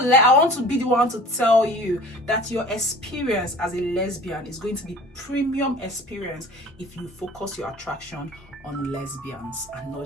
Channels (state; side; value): normal; both; correlation 0.44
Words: to be the one to tell you that your experience as a lesbian is going to be premium experience if you focus your attraction on lesbians and